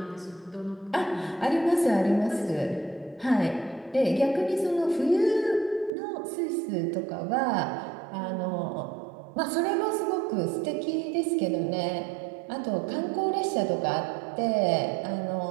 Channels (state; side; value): drops out; left; at 5.9 s